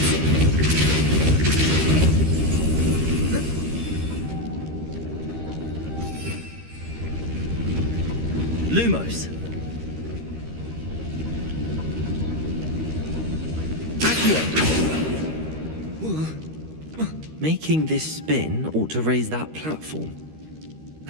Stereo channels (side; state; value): left; late; 13 ms